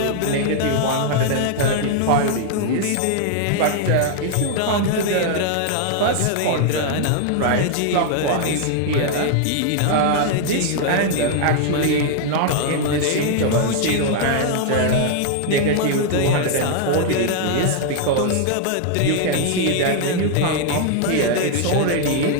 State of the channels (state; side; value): different; both; correlation 0.00